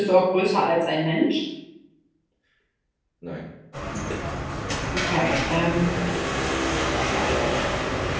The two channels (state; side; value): identical; both; correlation 1.00